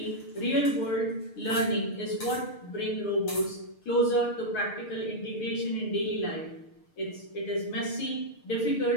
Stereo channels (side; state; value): right; late; 6.6 ms